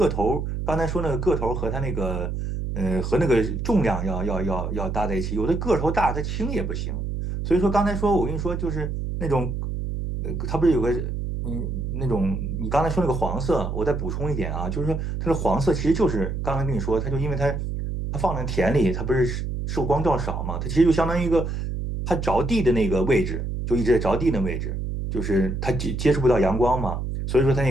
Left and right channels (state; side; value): noise; right; hum, 3 dB below the sound